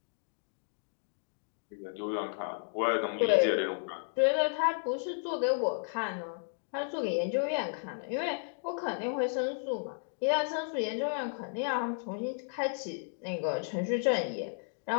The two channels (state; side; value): silent; right; digital silence